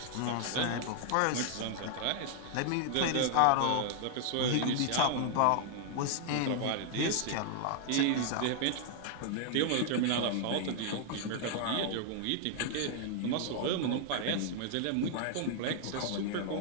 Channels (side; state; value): both; different; correlation 0.00